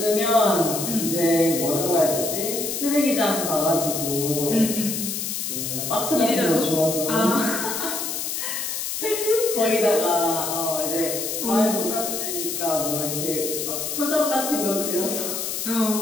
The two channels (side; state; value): left; noise; hiss, 3 dB below the sound